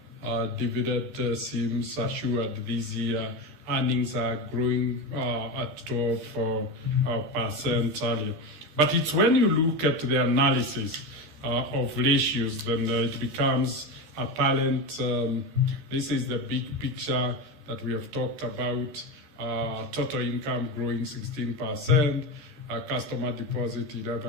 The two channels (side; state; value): left; late; 13 ms